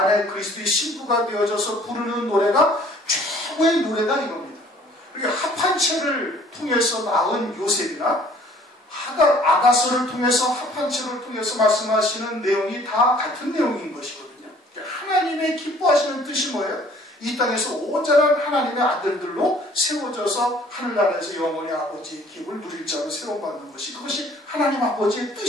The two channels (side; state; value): both; normal; correlation 0.55